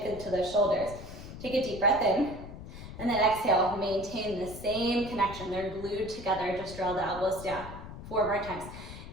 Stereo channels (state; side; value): noise; left; rumble, 12 dB below the sound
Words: into the shoulders. Take a deep breath in. And then exhale, maintain the same connection. They're glued together. Just draw the elbows down. 4 more times.